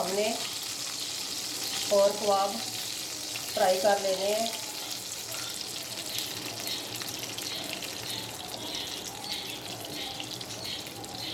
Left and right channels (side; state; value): both; identical; correlation 1.00